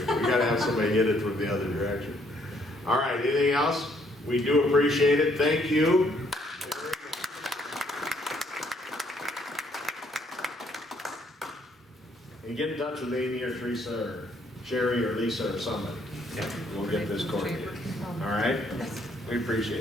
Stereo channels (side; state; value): both; normal; correlation 0.68